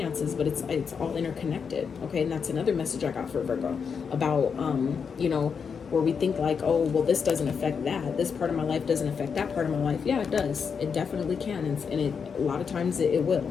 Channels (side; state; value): right; quieter; 6.2 dB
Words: but it's all interconnected, okay? And that's another message I got for Virgo about, you know, where we think like, oh, well, this doesn't affect that. This part of my life doesn't affect that part of my life. Yeah, it does. It definitely can. And a lot of times it will,